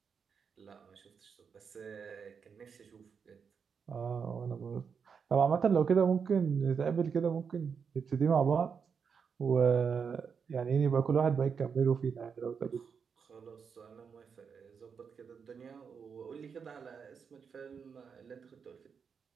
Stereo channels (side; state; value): left; quieter; 6.3 dB